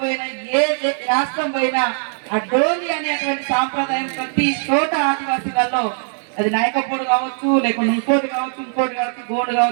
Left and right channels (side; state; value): left; silent; 59 dB below the other